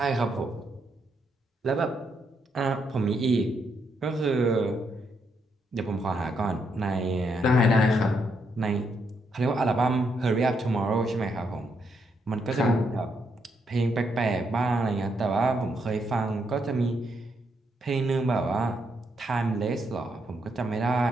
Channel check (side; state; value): both; normal; correlation 0.77